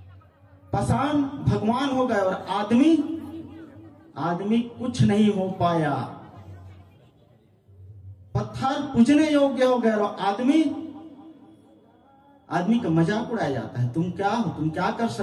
पाषाण भगवान हो गए और आदमी कुछ नहीं हो पाया। पत्थर पूजने योग्य हो गए और आदमी का मजाक उड़ाया जाता है। तुम क्या हो, तुम क्या कर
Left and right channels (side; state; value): both; identical; correlation 1.00